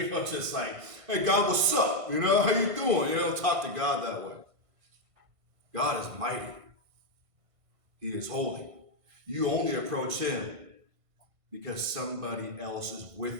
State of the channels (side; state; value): left; late; 1.5 ms